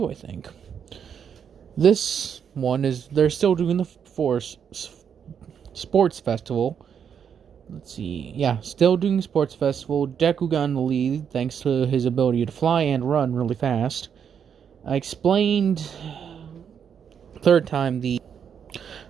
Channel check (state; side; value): quieter; left; 7.7 dB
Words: I think. This one is, they're still doing the Force Sports Festival. Let's see. Yeah, still doing sports festival. Deku got in the lead thanks to his ability to fly and run really fast. I explained third time the